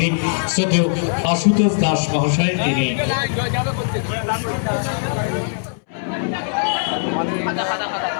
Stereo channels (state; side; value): silent; right; 65 dB below the other